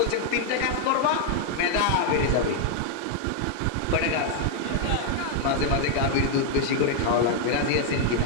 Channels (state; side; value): different; both; correlation 0.00